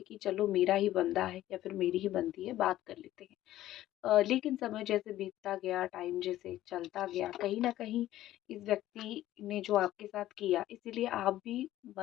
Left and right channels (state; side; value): quieter; right; 14.1 dB